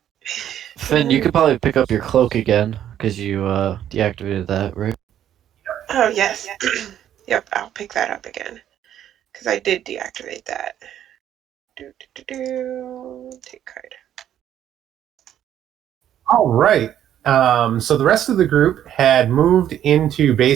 Finn, you could probably pick up your cloak again because you deactivated that, right? Oh yes. Yep, I'll pick that up again because I did deactivate that. Take card. All right. So the rest of the group had moved into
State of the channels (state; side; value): quieter; left; 10.7 dB